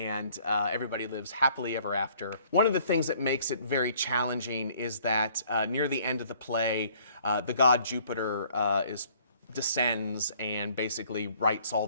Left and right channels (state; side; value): inverted; both; correlation -0.59